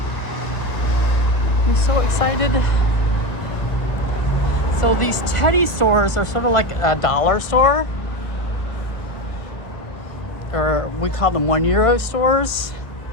I'm so excited. So these Teddy stores are sort of like a dollar store, or we call them €1 stores.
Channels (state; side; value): late; right; 1.4 ms